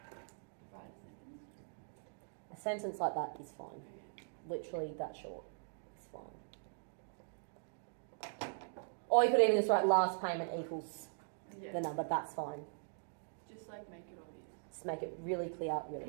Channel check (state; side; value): silent; left; digital silence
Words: write a sentence? A sentence like that is fine. Literally that short. It's fine. Or you could even just write last payment equals the number. That's fine. Just like make it obvious. Just make it really clear,